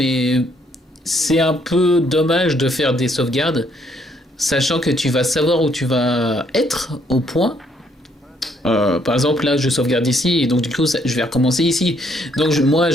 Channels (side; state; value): both; normal; correlation 0.69